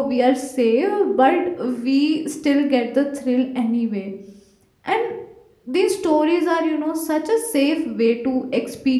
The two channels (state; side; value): identical; both; correlation 1.00